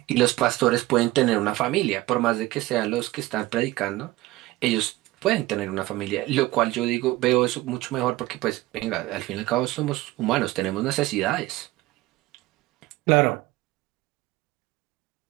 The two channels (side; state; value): left; quieter; 18.1 dB